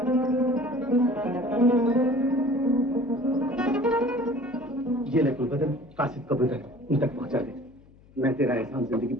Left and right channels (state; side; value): noise; left; hum, 26 dB below the sound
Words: ये ले गुलबदन, कासिद कबूतर उन तक पहुंचा दे। मैं तेरा एहसान जिंदगी